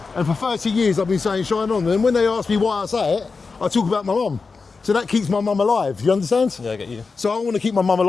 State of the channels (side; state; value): right; quieter; 4.5 dB